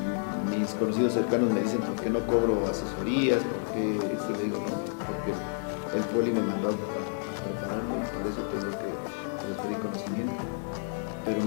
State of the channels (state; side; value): silent; right; digital silence